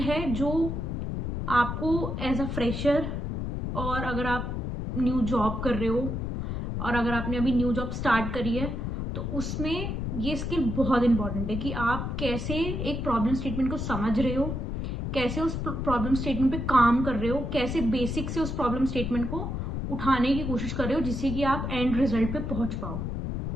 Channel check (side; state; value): left; noise; rumble, 3 dB below the sound